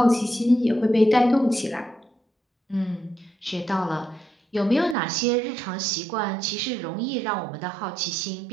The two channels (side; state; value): left; drops out; at 5.0 s